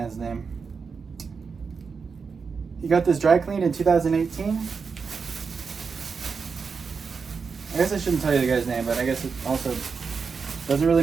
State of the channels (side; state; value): left; quieter; 5.4 dB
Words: name. He got this dry cleaned in 2018. I guess I shouldn't tell you the guy's name, but I guess it also doesn't really